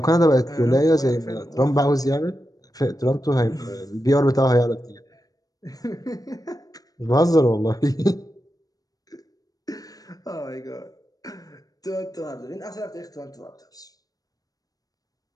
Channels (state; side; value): late; right; 0.18 ms